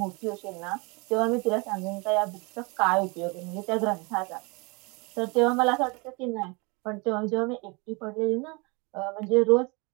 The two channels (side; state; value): left; quieter; 29.2 dB